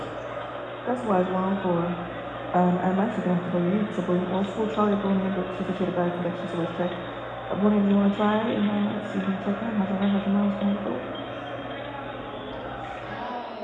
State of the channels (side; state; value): both; identical; correlation 1.00